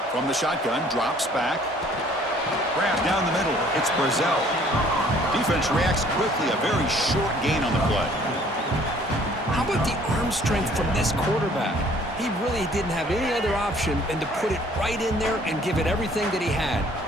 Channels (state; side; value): normal; both; correlation 0.57